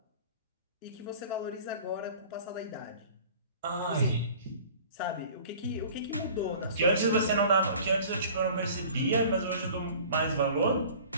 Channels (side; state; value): both; inverted; correlation -0.45